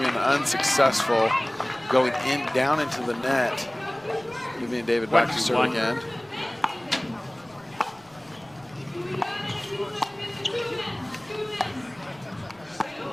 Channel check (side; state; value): left; noise; rumble, 29 dB below the sound